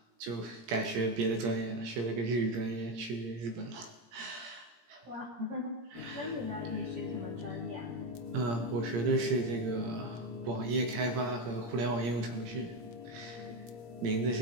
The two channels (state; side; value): late; left; 17 ms